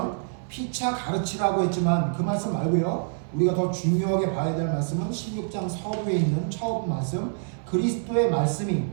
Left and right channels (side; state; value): left; silent; 61 dB below the other